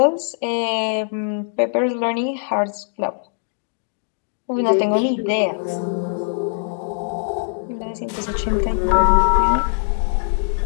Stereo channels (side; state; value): right; silent; digital silence